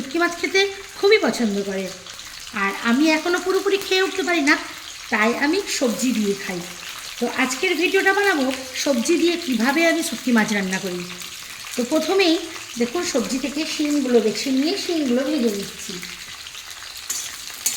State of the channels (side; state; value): both; identical; correlation 1.00